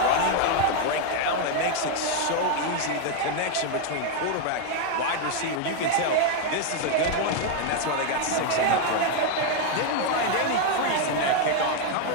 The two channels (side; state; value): both; different; correlation 0.01